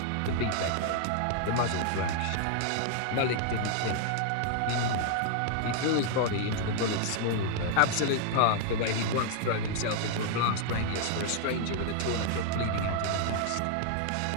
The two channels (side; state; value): both; different; correlation 0.00